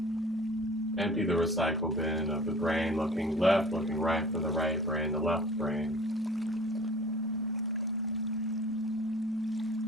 Empty the recycle bin of the brain, looking left, looking right for the right brain, the left brain.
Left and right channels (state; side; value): normal; both; correlation 0.45